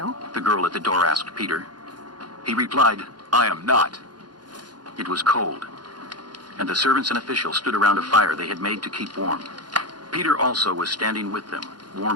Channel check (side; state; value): left; late; 0.70 ms